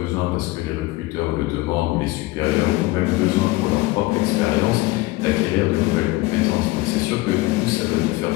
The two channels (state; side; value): quieter; right; 20.2 dB